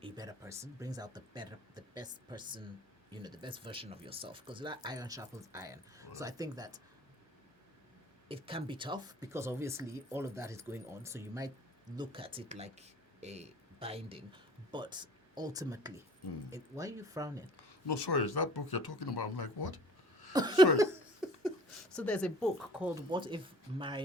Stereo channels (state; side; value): normal; both; correlation 0.48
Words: a better person, brings out the best person, the best version of yourself. Because that iron sharpens iron. Right. So I think that it can be tough because obviously all of that is going on. So you might look at it like a binding, but ultimately, why are you frowning? No, sorry, is that book you're talking about? I'm like, what? Sorry. So there's a book called What If